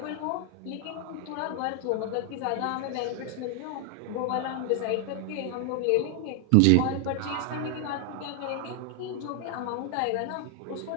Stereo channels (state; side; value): different; both; correlation 0.00